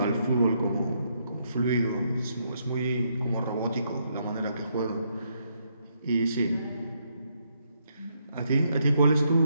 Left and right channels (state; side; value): inverted; both; correlation -0.75